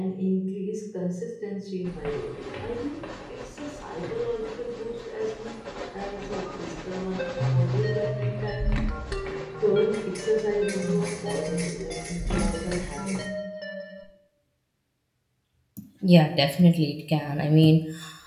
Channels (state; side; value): identical; both; correlation 1.00